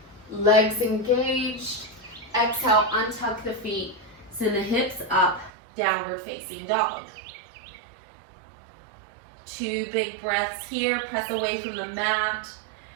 Legs engaged. Exhale, untuck the feet. Send the hips up, downward facing dog. 2 big breaths here. Press away from the mat.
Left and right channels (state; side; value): drops out; left; at 5.5 s